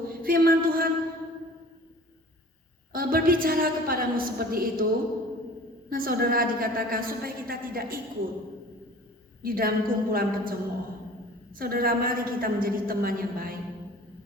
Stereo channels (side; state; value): both; normal; correlation 0.45